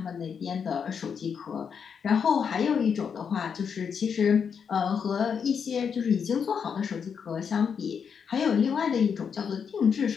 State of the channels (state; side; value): quieter; right; 6.8 dB